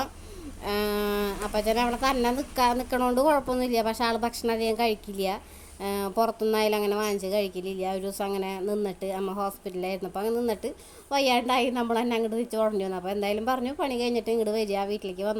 അപ്പച്ചൻ അവിടെ തന്നെ നിൽക്കണോണ്ട് കുഴപ്പമൊന്നുമില്ല. പക്ഷേ ആൾ ഭക്ഷണം അധികം കഴിക്കില്ല. പുറത്തുനിന്നായാലും അങ്ങനെ വാങ്ങിച്ച് കഴിക്കലില്ല. ഒരു ദിവസം അങ്ങനെ നിന്നിട്ട് അമ്മ ഹോസ്പിറ്റലിലായിരുന്നു. അപ്പോൾ അങ്ങനെ നിന്നിട്ട് വയ്യാണ്ടായി നമ്മൾ തന്നെ അങ്ങോട്ട് തിരിച്ച് ഉടഞ്ഞു വന്നു. അപ്പോൾ എന്തായാലും പറഞ്ഞു പണി കഴിഞ്ഞിട്ട് ഇങ്ങോട്ട് വരിക, വീട്ടിലേക്ക്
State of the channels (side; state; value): both; identical; correlation 1.00